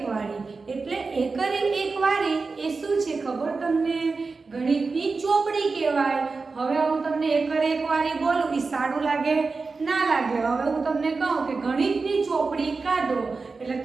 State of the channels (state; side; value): quieter; left; 4.2 dB